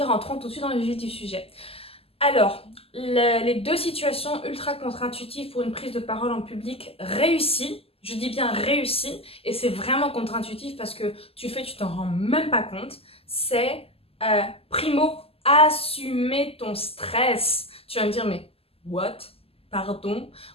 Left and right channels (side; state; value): right; late; 0.28 ms